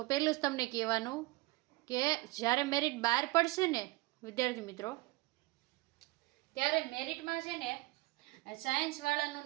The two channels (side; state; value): left; quieter; 21.3 dB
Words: પહેલું જ તમને કહેવાનું કે જ્યારે મેરિટ બહાર પડશે ને વિદ્યાર્થી મિત્રો, ત્યારે મેરિટમાં છે ને સાયન્સવાળાનું